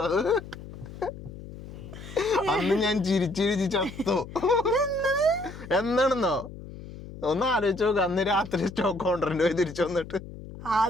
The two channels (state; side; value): noise; left; hum, 14 dB below the sound